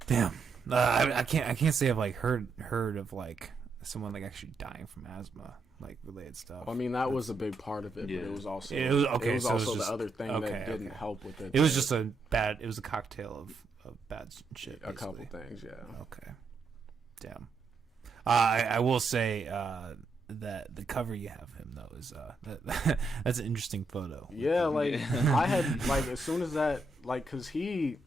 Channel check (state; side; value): quieter; left; 3.4 dB